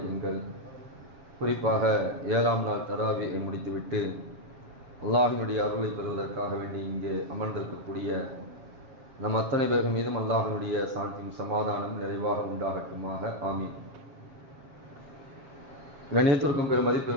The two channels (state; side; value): late; left; 7.4 ms